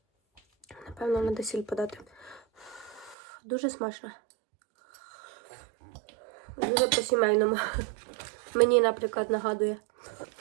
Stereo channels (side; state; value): left; drops out; at 3.2 s